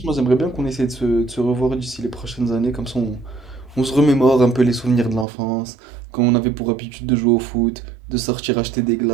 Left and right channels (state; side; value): drops out; left; at 5.2 s